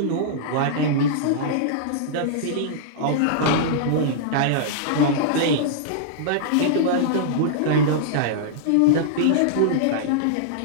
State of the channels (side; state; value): both; different; correlation -0.02